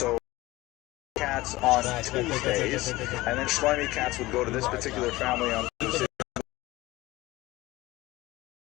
cats on Tuesdays, and then Shlomi cats would go to this particular family on Tuesdays.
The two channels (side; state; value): right; quieter; 19.1 dB